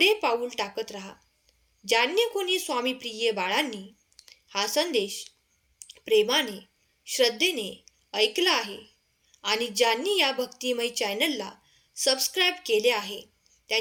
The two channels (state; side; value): identical; both; correlation 1.00